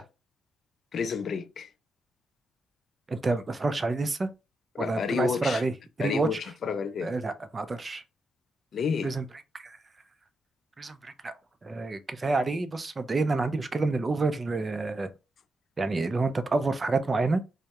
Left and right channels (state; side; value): normal; both; correlation 0.85